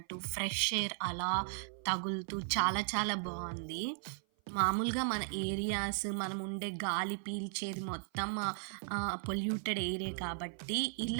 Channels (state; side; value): silent; left; 53 dB below the other